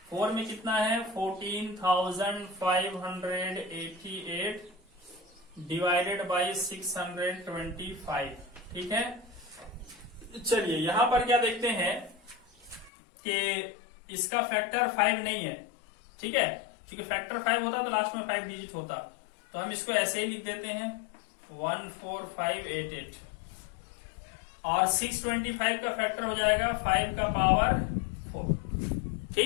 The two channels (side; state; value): right; drops out; at 12.9 s